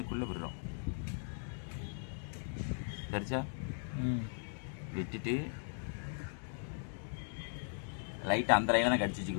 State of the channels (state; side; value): silent; right; digital silence